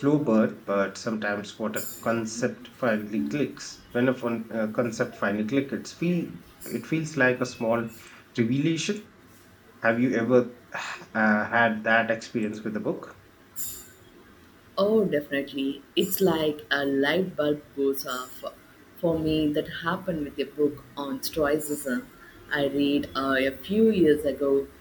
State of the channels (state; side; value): identical; both; correlation 1.00